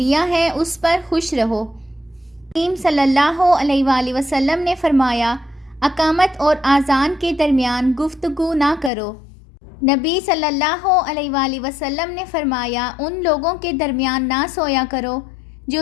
ہے اس پر خوش رہو۔ کریم صلی اللہ علیہ وآلہ وسلم نے فرمایا، اقامت اور اذان کے درمیان گفتگو نہ کرو۔ نبی صلی اللہ علیہ وآلہ وسلم نے فرمایا، ان لوگوں کے درمیان نہ سویا کرو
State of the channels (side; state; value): right; drops out; at 8.9 s